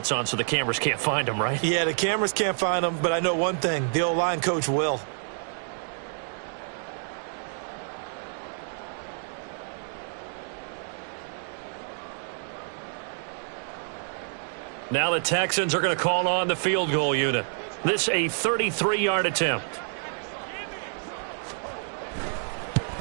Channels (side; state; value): left; silent; 59 dB below the other